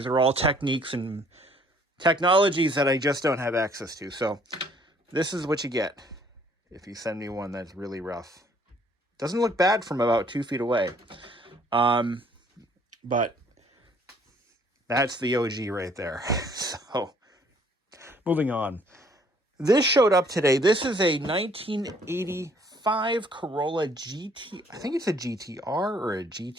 are all techniques and technologies that I just don't have access to. So this is what you get if you send me one that's really rough. Doesn't look bad from about 2 feet away. But that's the OG right there. So moving on. This showed up today. This is a 1985 Corolla GT. I think it's a GTR or a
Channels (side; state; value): both; normal; correlation 0.61